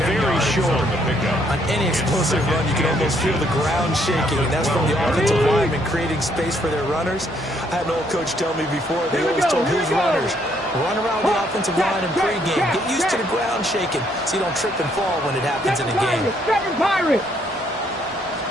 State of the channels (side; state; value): both; normal; correlation 0.69